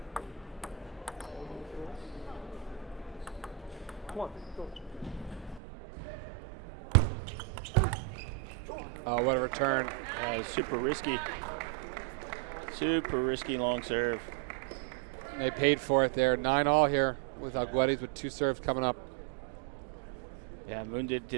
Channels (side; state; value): left; drops out; at 5.6 s